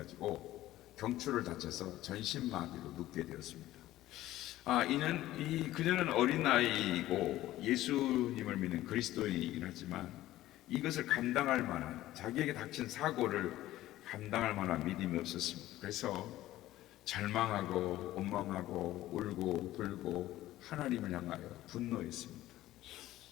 경추를 다쳐서 전신마비로 눕게 되었습니다. 그녀는 어린 나이이고 예수님을 믿는 그리스도인이긴 하지만 이것을 감당할 만한, 자기에게 닥친 사고를 감당할 만한 믿음이 없었습니다. 그래서 절망하고 원망하고 울고 불고 하나님을 향하여 분노했습니다.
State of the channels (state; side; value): quieter; right; 15.2 dB